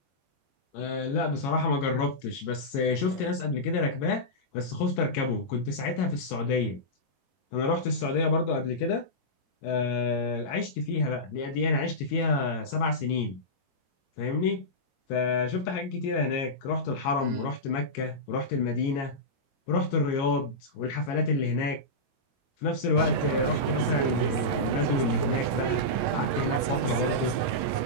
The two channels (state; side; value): late; right; 22 ms